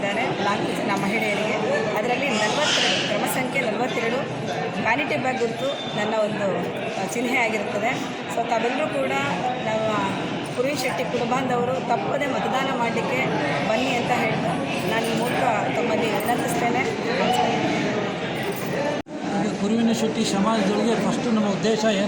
4 ಜನ ಮಹಿಳೆಯರಿಗೆ. ಅದರಲ್ಲಿ 42 ಕ್ರಮ ಸಂಖ್ಯೆ 42 ವ್ಯಾನಿಟಿ ಬ್ಯಾಗ್ ಗುರುತು ನನ್ನ ಒಂದು ಚಿಹ್ನೆ ಆಗಿರುತ್ತದೆ. ಸೊ ತಾವೆಲ್ಲರೂ ಕೂಡ ನಮ್ಮ ಕುರುವಿನ್ ಶೆಟ್ಟಿ ಕುಟುಂಬದವರು ತಪ್ಪದೆ ಮತದಾನ ಮಾಡಲಿಕ್ಕೆ ಬನ್ನಿ ಅಂತ ಹೇಳ್ತಾ ನಾನು ಈ ಮೂಲಕ ತಮ್ಮಲ್ಲಿ ವಿನಂತಿಸ್ತೇನೆ. ಕುರುವಿನ ಶೆಟ್ಟಿ ಸಮಾಜದೊಳಗೆ ಫಸ್ಟು ನಮ್ಮ ಉದ್ದೇಶ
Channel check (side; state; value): both; identical; correlation 1.00